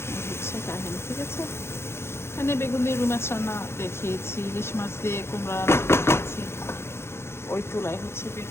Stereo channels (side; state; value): right; late; 0.12 ms